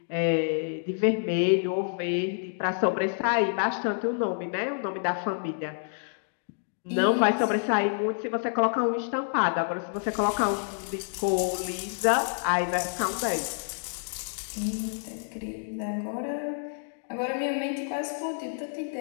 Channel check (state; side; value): silent; right; digital silence